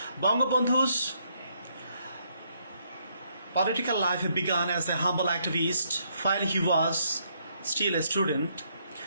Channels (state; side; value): inverted; both; correlation -0.72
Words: Bangabandhu's political life began as a humble activist while he was still a student.